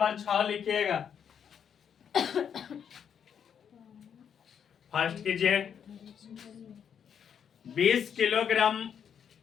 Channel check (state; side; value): quieter; right; 8.0 dB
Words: 6 लिखिएगा। फर्स्ट कीजिए 20